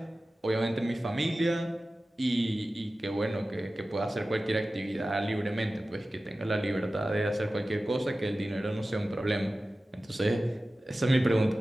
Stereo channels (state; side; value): normal; both; correlation 0.95